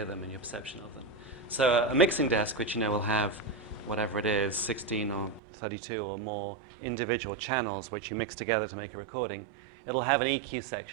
them and your perception of them. So a mixing desk, which will have whatever it is, 16 or 32 or more individual channels which you mix together to make a recording, it'll have an EQ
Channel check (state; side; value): drops out; left; at 5.4 s